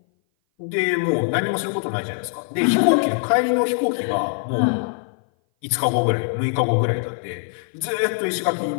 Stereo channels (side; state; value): right; silent; 58 dB below the other